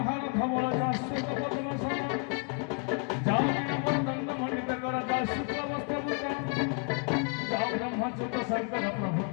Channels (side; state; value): right; quieter; 37.7 dB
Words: हार धवल जाश्रुत पद्मसन जाई अमर दंड मंडित कर जाश्रुत वस्त्र भूषण जा ब्रह्मच्युत शंकर